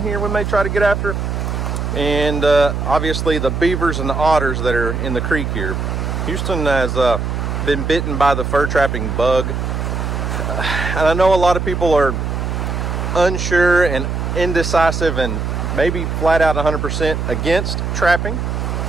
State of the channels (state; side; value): noise; right; hum, 2 dB below the sound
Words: here we may try to get after, and obviously the beavers and the otters that are in the creek here. Houston has been bitten by the fur trapping bug, and I know a lot of people are unsure and indecisive and maybe flat out 100% against trapping,